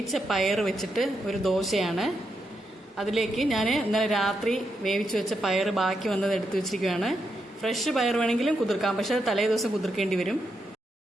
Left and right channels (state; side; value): normal; both; correlation 0.83